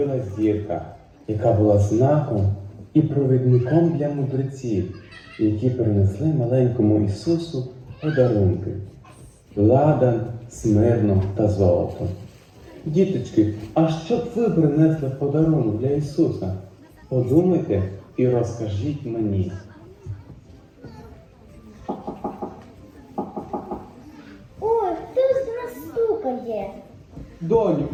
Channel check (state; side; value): identical; both; correlation 1.00